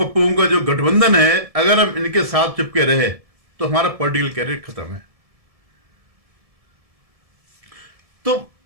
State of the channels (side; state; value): left; late; 1.7 ms